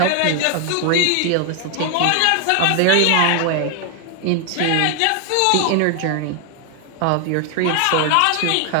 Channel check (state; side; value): different; both; correlation 0.00